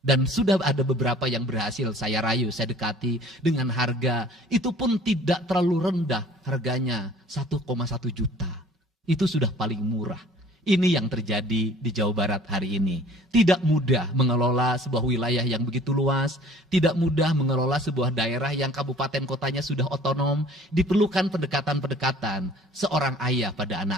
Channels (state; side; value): normal; both; correlation 0.50